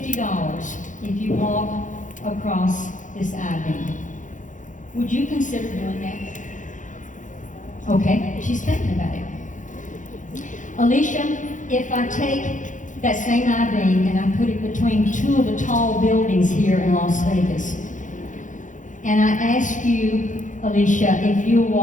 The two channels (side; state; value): right; late; 0.37 ms